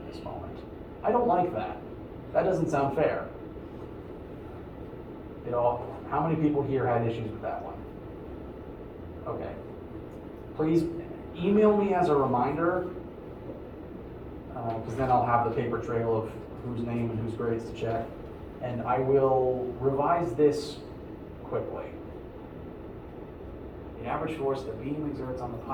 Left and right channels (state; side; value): identical; both; correlation 1.00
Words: this moment. I don't like that. That doesn't sound fair. How many people here had issues with that one? Okay. Please email me as a reminder, because then I'll have the paper trail of whose name and whose grades to check. And I will revise this quickly. The average force the beam exerts on the